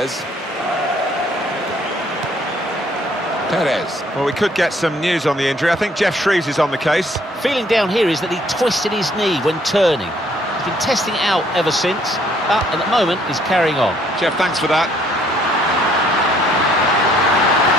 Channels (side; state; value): both; normal; correlation 0.64